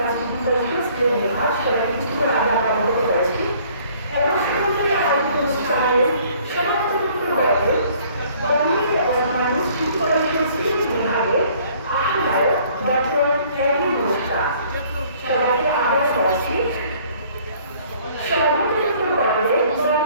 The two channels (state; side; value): inverted; both; correlation -0.57